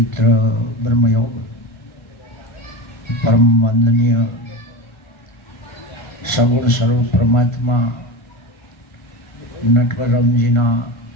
બ્રહ્મયોગ પરમ વંદનીય સગુણ સ્વરૂપ પરમાત્મા નટવરરામજીના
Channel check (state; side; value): late; right; 1.5 ms